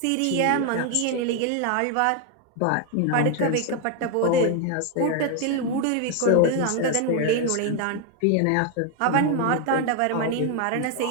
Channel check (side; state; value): both; different; correlation 0.01